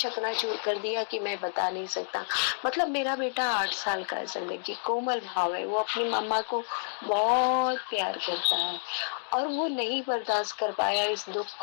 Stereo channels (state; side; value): silent; right; digital silence